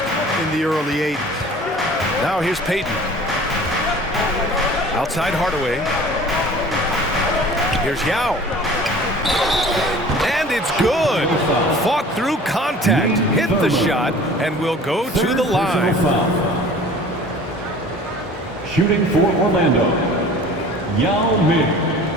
in the early 80s. Now here's Payton. Outside Hardaway. Here's Yao. And it's good. Fought through contact, hit the shot, and will go to the line. Shooting for Orlando, Yao Ming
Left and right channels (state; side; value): normal; both; correlation 0.45